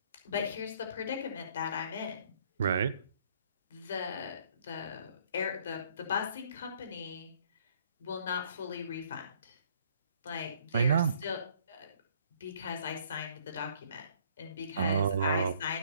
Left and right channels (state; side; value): inverted; both; correlation -0.62